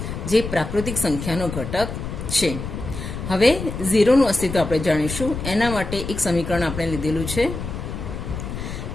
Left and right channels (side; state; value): left; noise; rumble, 7 dB below the sound